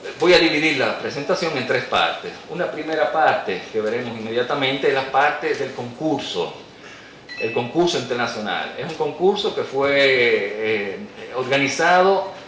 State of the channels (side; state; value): both; identical; correlation 1.00